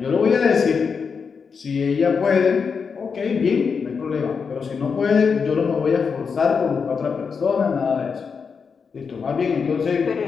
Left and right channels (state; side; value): quieter; right; 5.7 dB